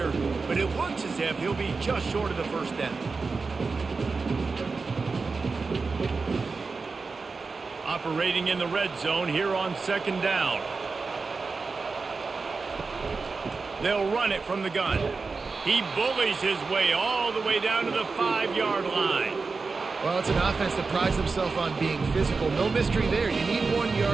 but it looks as if he'll be just short of the first down. Operating in the red zone here on second down. They'll run it from the gun. He bullies his way all the way down to the 5-yard line. Well, it's an offense that prides themselves on being physical. No mystery there. You need 1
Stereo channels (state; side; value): quieter; left; 4.3 dB